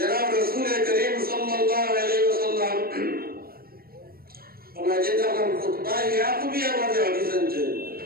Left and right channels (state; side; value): late; left; 0.44 ms